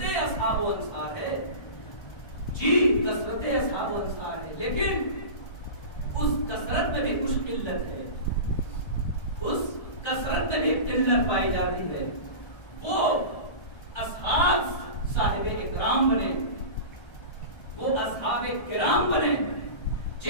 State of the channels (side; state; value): right; late; 1.3 ms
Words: اصحاب و انصار ہے. جی کثرت اصحاب و انصار ہے, لیکن اس کثرت میں بھی کچھ قلت ہے. اس کثرت میں بھی قلت پائی جاتی ہے. وہ اصحاب صاحب اکرام بنے, وہ اصحاب کرام بنے